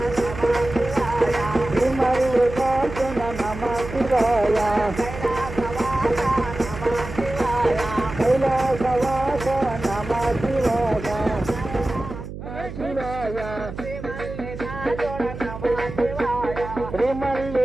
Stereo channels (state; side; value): noise; right; hum, 10 dB below the sound